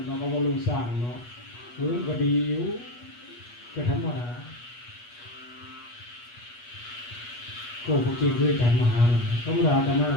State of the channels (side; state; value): right; late; 8.3 ms